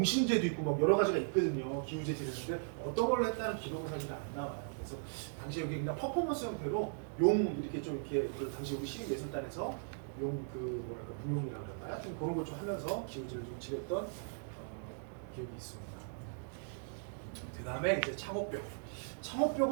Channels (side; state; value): left; silent; digital silence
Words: 있고 뭐 여러 가지가 있거든요. 기우제 지냈는데 어떤 걸 했다는 기록은 사실 안 나와요. 그래서 당시에 그냥 퍼포먼스 형태로 용 이렇게 좀 이렇게 당시 우리 시립예술단에서 용 무용이라고 할까요? 좀 그런 걸 좀 하면서 기우제를 좀 지냈던 기억이 있습니다. 그 다음에 이제 창업벽.